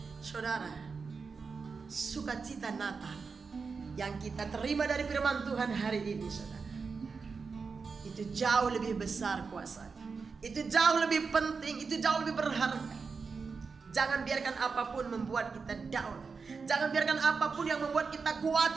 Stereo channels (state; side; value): quieter; left; 5.0 dB